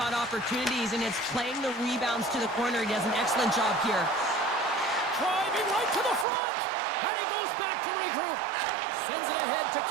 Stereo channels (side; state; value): left; drops out; at 6.2 s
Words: opportunities, and it's playing the rebounds to the corner. He does an excellent job here. Driving right to the front, and he goes back to regroup. Sends it ahead to